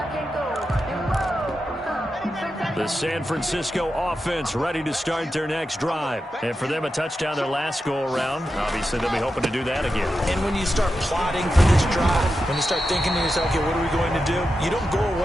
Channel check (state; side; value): normal; both; correlation 0.89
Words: The San Francisco offense ready to start their next drive. And for them, a touchdown their last go-around. Obviously, they'll be hoping to do that again. And when you start plotting for this drive, when you start thinking to yourself, okay, what are we going to do? You don't go